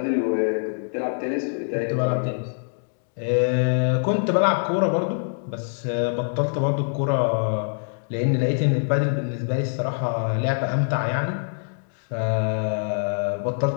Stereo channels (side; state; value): right; silent; digital silence